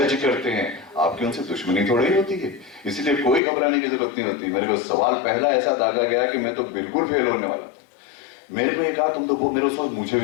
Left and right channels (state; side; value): drops out; right; at 3.4 s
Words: करते हैं, आपकी उनसे दुश्मनी थोड़ी ही होती है, इसलिए कोई घबराने की जरूरत नहीं होती। मेरे को सवाल पहला ऐसा दागा गया कि मैं तो बिल्कुल फेल होने वाला था। मेरे को ये कहा तुम तो वो मेरे उस वक्त मुझे